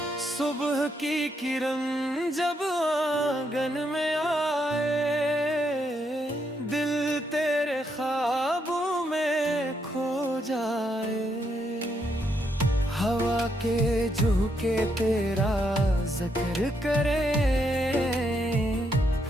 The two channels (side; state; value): both; normal; correlation 0.77